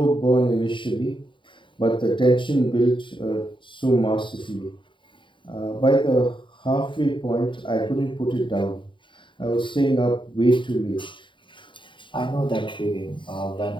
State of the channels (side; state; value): right; late; 0.24 ms